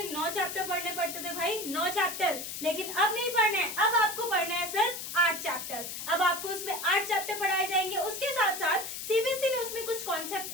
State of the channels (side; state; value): left; noise; hiss, 7 dB below the sound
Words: 9 चैप्टर पढ़ने पड़ते थे भाई, 9 चैप्टर, लेकिन अब नहीं पढ़ने, अब आपको पढ़ना है सिर्फ 8 चैप्टर। अब आपको उसमें 8 चैप्टर पढ़ाए जाएंगे। उसके साथ साथ सीबीएसई ने उसमें कुछ